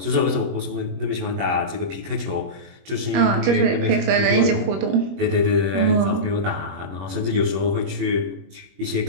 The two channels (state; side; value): late; left; 21 ms